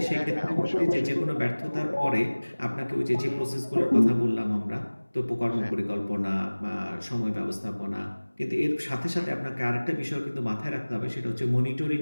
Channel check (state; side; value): inverted; both; correlation -1.00